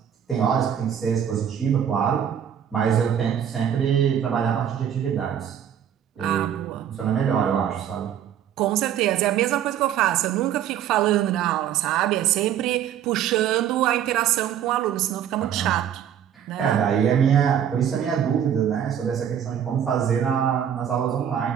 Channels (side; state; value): left; quieter; 9.5 dB